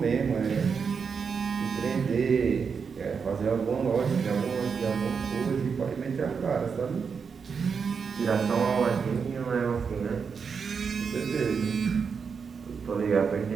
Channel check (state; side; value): quieter; left; 5.9 dB